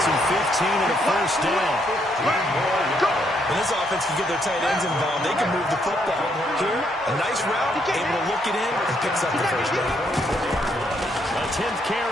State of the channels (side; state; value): both; normal; correlation 0.73